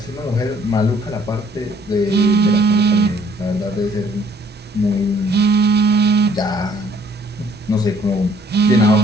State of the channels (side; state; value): both; normal; correlation 0.61